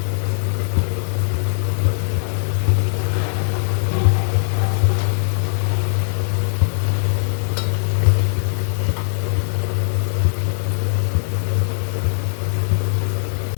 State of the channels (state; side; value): silent; right; digital silence